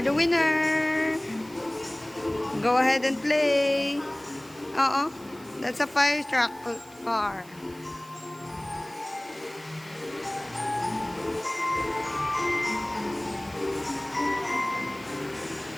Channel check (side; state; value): right; noise; hiss, 23 dB below the sound